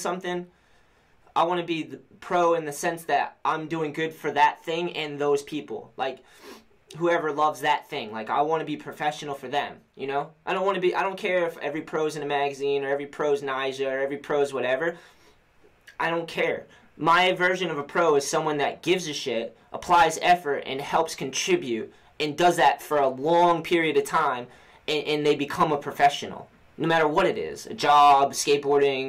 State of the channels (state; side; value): identical; both; correlation 1.00